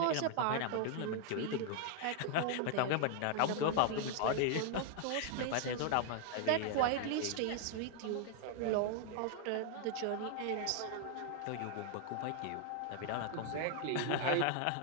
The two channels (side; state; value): both; different; correlation 0.00